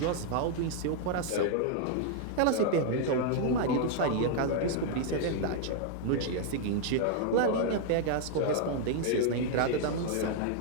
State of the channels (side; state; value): both; different; correlation 0.00